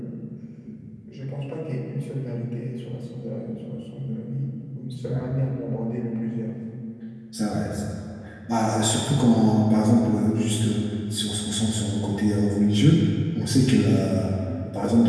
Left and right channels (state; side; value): identical; both; correlation 1.00